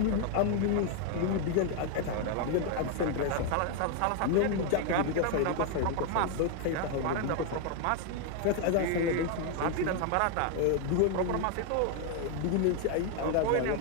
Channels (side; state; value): both; different; correlation 0.01